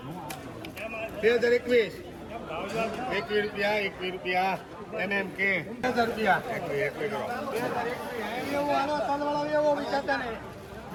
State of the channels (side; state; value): both; identical; correlation 1.00